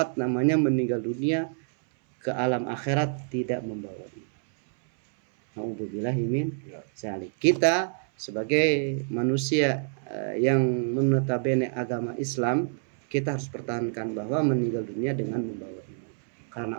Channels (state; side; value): silent; left; 60 dB below the other